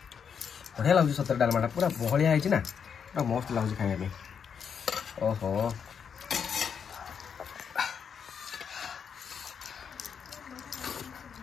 ବଢ଼ିଆ ଲାଗୁଛି ସତରେ ଡାଲମାଟା, ପୁରା ବହଳିଆ ହେଇଛି ନା, ପୁରା ମସ୍ତ ଲାଗୁଛି ଖାଇବା ପାଇଁ। ଓହୋ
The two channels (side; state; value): right; quieter; 7.0 dB